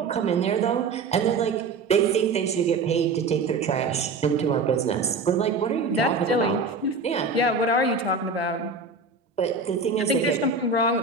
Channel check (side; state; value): left; quieter; 4.1 dB